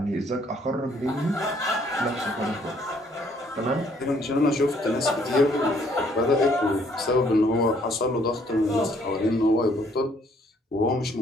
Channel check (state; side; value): normal; both; correlation 0.65